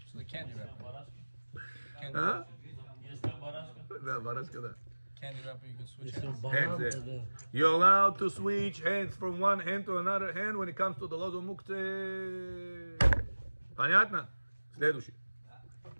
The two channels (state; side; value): inverted; both; correlation -1.00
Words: So the candy wrapper. А? Если барашка. Да, барашка, да. Candy wrapper, you can switch Если hands. он Hands баран, there. тогда You're allowed to switch hands from one hand to another hand when it comes to the lozо muktzeh. Понятно? Следующий.